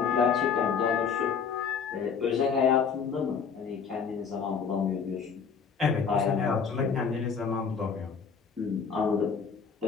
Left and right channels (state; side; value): quieter; right; 6.2 dB